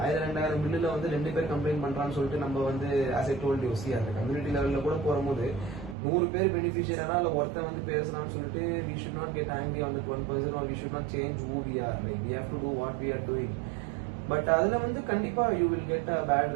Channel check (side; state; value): left; drops out; at 6.0 s